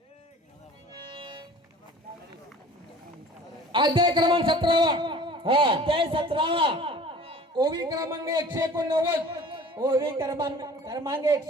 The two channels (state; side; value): normal; both; correlation 0.46